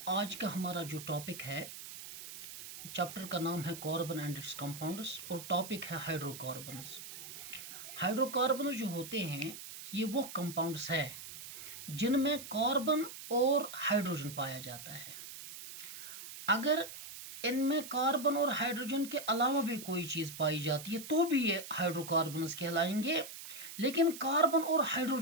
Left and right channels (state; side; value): noise; right; hiss, 12 dB below the sound